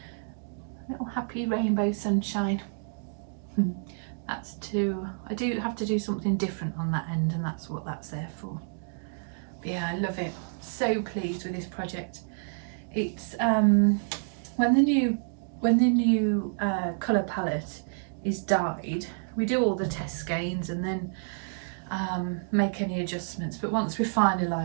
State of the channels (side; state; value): left; silent; digital silence